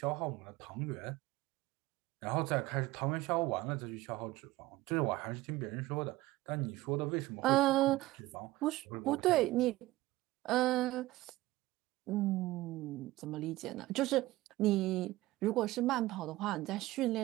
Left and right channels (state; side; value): quieter; left; 18.0 dB